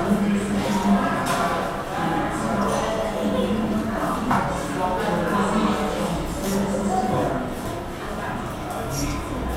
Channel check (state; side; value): identical; both; correlation 1.00